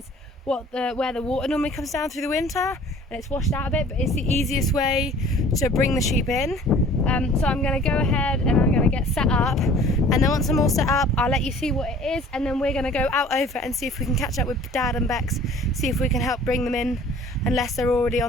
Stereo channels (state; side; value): normal; both; correlation 0.49